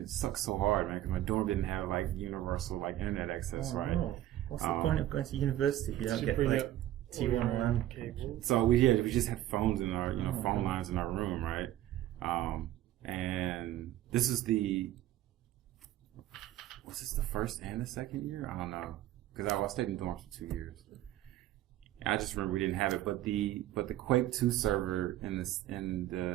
sucks so hard, man. Because my dorm didn't have like universal like internet access, right? No. What's the point of going to university if you don't get like T1 LAN cable. So we just had phones in our phone lines in our room, right? And this is was this the first and the second year? I don't know, because I stayed in dorms for 2 years. I just remember we didn't have it, but the Quake 2 server in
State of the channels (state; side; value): quieter; left; 13.7 dB